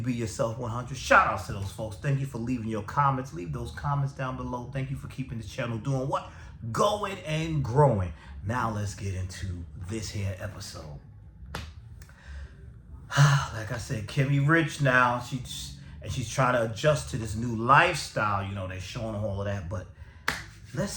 Yourself 100. Shout outs to those folks. Thank you for leaving your comments. Leave those comments down below. Thank you for keeping the channel doing what? Going and growing. Now let's get into this here episode. Like I said, Kimmy rich now. She's trying to adjust to this new lifestyle. You know, they're showing all of that, but let's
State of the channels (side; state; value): both; identical; correlation 1.00